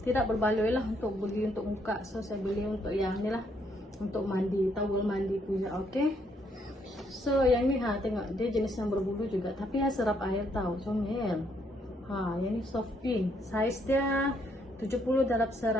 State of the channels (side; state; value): both; normal; correlation 0.72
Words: tidak berbaloi lah untuk beli untuk muka. So saya beli untuk yang ni lah, untuk mandi, towel mandi punya. Okay. So yang ni tengok dia jenis yang berbulu juga, tapi serap air tau, comel. Yang ni soft pink. Size dia 70 darab